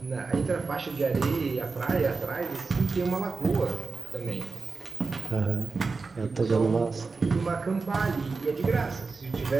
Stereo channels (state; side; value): quieter; left; 4.3 dB